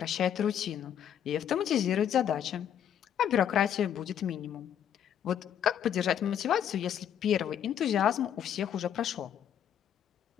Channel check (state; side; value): quieter; right; 9.4 dB